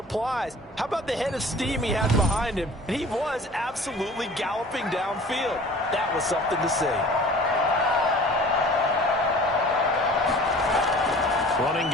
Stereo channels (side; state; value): both; normal; correlation 0.45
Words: How about the head of steam he had behind him? And he was absolutely galloping downfield. That was something to see. Running